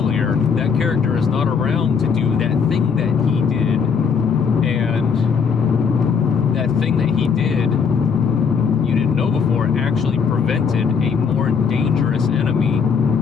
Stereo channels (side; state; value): right; quieter; 6.1 dB